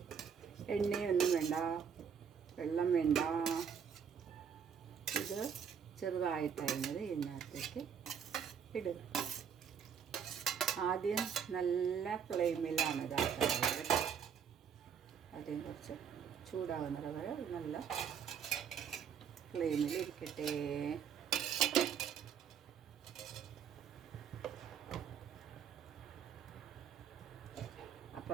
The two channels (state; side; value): quieter; left; 7.5 dB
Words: എണ്ണയൊന്നും വേണ്ട, വെള്ളം വേണ്ട. ഇത് ചെറുതായിട്ടരിഞ്ഞത് ഇതിനകത്തേക്ക് ഇടുക. ആദ്യം നല്ല ഫ്ലെയിമിലാണ് ഇതാക്കുന്നത്. ആദ്യം കുറച്ച് ചൂടാകുന്നത് വരെ നല്ല ഫ്ലെയിമിൽ ഇരിക്കട്ടെ.